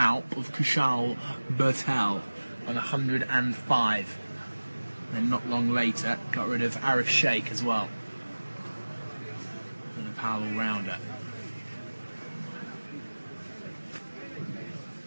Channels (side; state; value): both; inverted; correlation -1.00